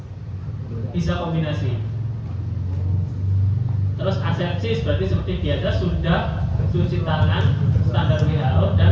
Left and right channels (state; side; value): identical; both; correlation 1.00